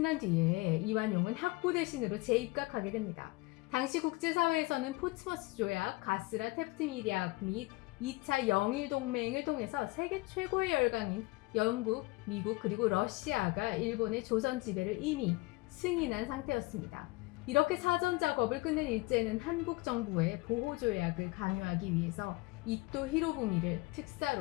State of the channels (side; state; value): right; quieter; 22.4 dB